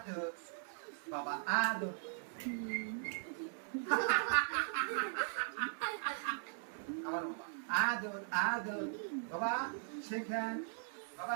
বাবা আদর আমার বাবা আদর আদর বাবা শেখান বাবা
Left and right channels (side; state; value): left; silent; digital silence